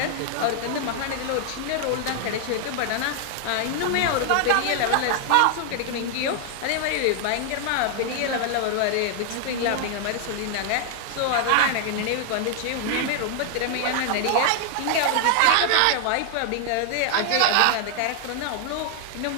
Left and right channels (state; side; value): different; both; correlation 0.00